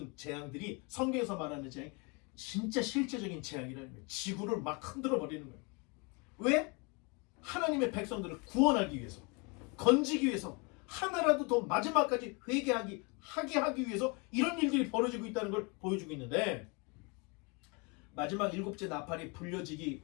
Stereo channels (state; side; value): quieter; right; 30.9 dB